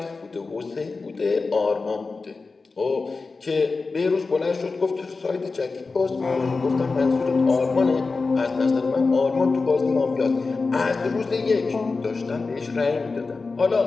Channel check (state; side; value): quieter; right; 4.1 dB